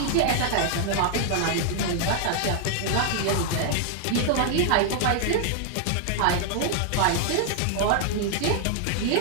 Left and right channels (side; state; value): both; different; correlation 0.00